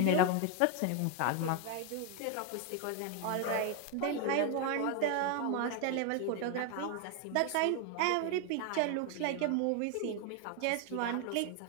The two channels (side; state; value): both; different; correlation 0.01